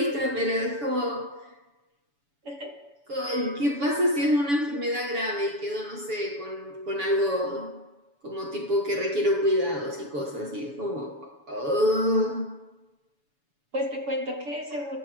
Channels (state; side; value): late; left; 7.0 ms